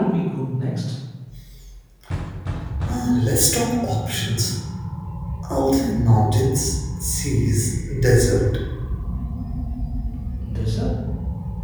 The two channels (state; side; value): identical; both; correlation 1.00